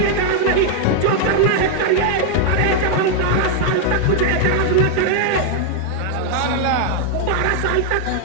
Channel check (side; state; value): both; different; correlation 0.00